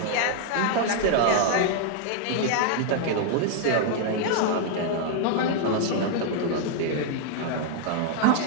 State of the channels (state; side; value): different; both; correlation 0.00